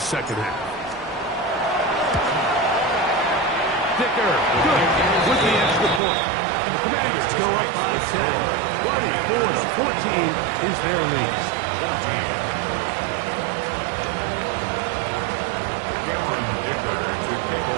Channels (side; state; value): left; drops out; at 6.0 s